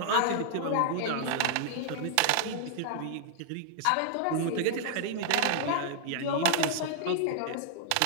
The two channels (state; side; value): different; both; correlation -0.01